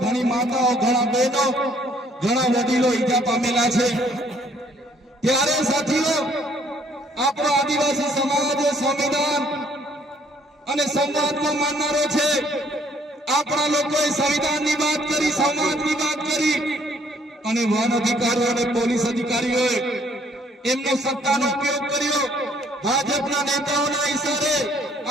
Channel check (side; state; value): both; normal; correlation 0.64